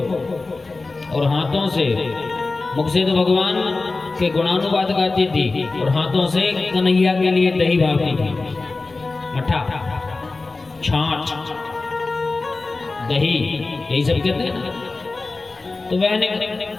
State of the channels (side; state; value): right; quieter; 3.6 dB